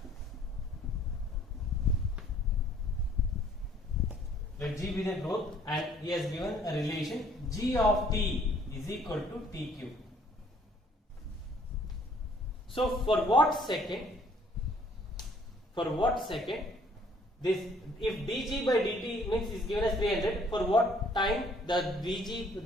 Let G be the growth, and he has given a relation G of t is equal to t cube. So for what second this, if dg by dt means is given as 300, for what time the dg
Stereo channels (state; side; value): normal; both; correlation 0.60